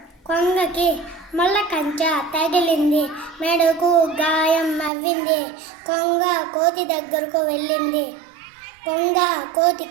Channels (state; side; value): drops out; left; at 4.9 s